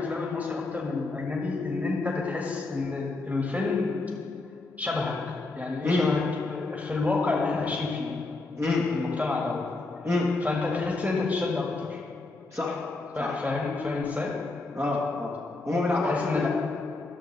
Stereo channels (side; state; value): right; quieter; 3.3 dB